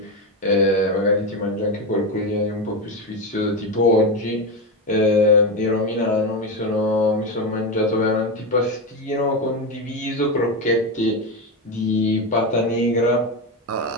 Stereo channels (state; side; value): normal; both; correlation 0.14